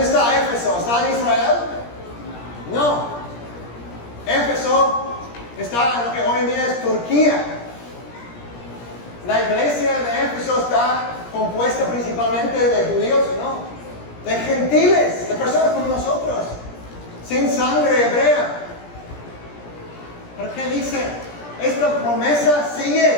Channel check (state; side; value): late; right; 17 ms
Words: está Éfeso? ¿Está en Israel? No. Éfeso está en lo que hoy en día es Turquía. La iglesia de Éfeso está compuesta principalmente de judíos, no, de gentiles, de personas como nosotros, sin sangre hebrea. ¿Pero qué dice? Esta promesa